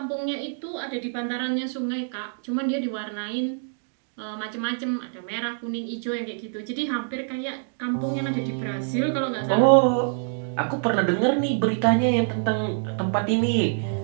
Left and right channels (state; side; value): silent; left; digital silence